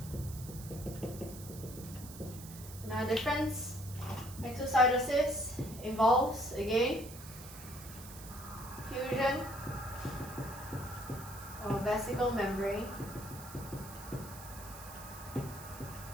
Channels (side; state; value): right; noise; hiss, 14 dB below the sound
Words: Now difference, exocytosis involves, again, fusion of vesicle membrane